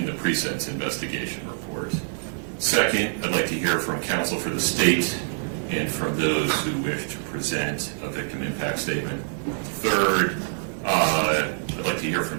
the pre-sentence investigation report. Second, I'd like to hear from counsel for the state and from those who wish to present a victim impact statement. Third, I'd like to hear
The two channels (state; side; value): silent; left; digital silence